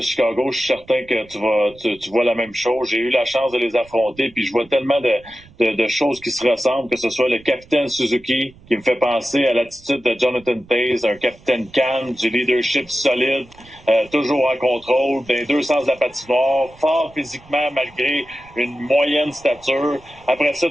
Chicago. Je suis certain que tu vois la même chose. J'ai eu la chance de les affronter, puis je vois tellement de choses qui se ressemblent, que ce soit le capitaine Suzuki, qui me fait penser à l'attitude de Jonathan Toews, un capitaine calme, du leadership solide, toujours en contrôle, dans les deux sens de la patinoire, fort physiquement malgré une moyenne stature. Après ça,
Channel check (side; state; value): right; noise; rumble, 25 dB below the sound